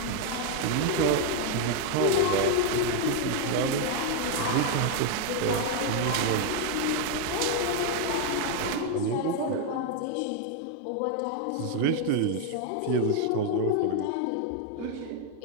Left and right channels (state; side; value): different; both; correlation 0.01